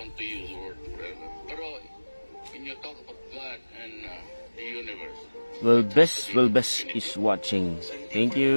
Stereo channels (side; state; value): both; inverted; correlation -1.00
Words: to use the word forever. Pero when you talk about God and the universe, Will best is watching. Thank